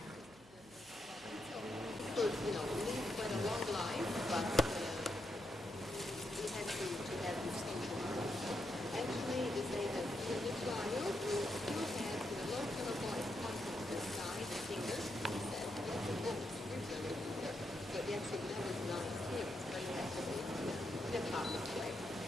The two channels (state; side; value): noise; right; hum, 25 dB below the sound